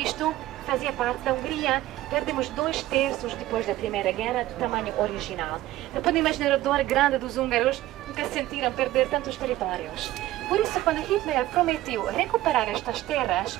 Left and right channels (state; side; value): quieter; left; 15.6 dB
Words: fazia parte da Hungria. Perdemos 2/3 depois da Primeira Guerra do tamanho original. Não podem imaginar a dor grande dos húngaros, nunca sentiram perder tantos territórios. Por isso, quando Hitler prometeu recuperar estas terras,